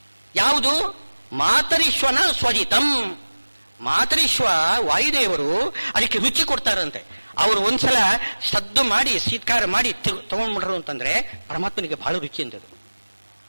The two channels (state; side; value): inverted; both; correlation -1.00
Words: ಯಾವುದು? ಮಾತರಿಶ್ವನ ಸ್ವಜಿತಂ. ಮಾತರಿಶ್ವ ವಾಯುದೇವರು ಅದಕ್ಕೆ ರುಚಿ ಕೊಡ್ತಾರಂತೆ. ಅವರು ಒಂದ್ಸಲ ಸದ್ದು ಮಾಡಿ ಶೀತ್ಕಾರ ಮಾಡಿ ತಗೊಂಡ್ಬಿಟ್ರು ಅಂತಂದ್ರೆ ಪರಮಾತ್ಮನಿಗೆ ಬಹಳ ರುಚಿ ಅಂತದ್ದು